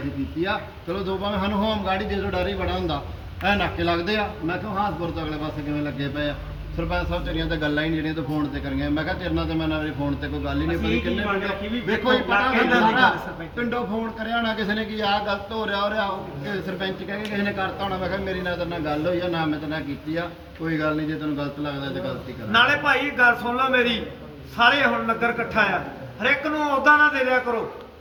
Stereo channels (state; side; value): identical; both; correlation 1.00